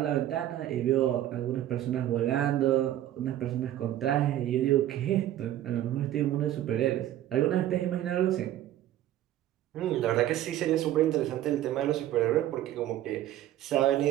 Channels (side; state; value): left; quieter; 12.9 dB